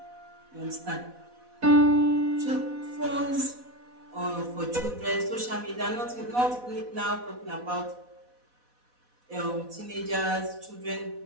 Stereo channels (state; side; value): late; left; 4.1 ms